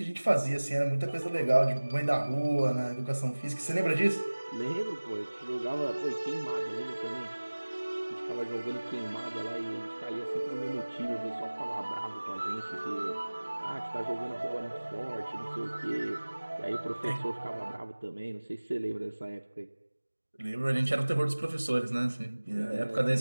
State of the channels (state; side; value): inverted; both; correlation -1.00